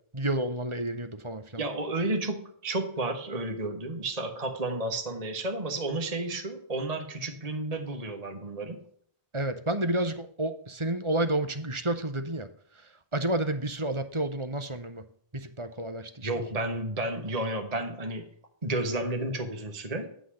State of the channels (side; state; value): left; late; 1.4 ms